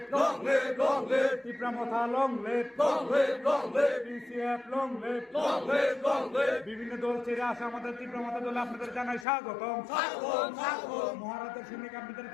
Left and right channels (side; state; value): right; drops out; at 9.2 s